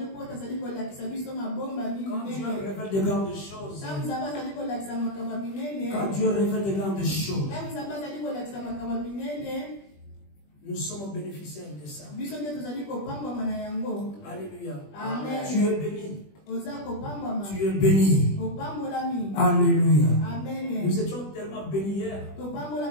Dieu révèle de grandes choses, quand Dieu révèle de grandes choses, nous sommes bénéficiaires de ça. Alléluia. Amen. Tu es béni. Tu es béni. Alléluia. Amen. Nous étions tellement bénis hier.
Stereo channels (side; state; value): right; late; 20 ms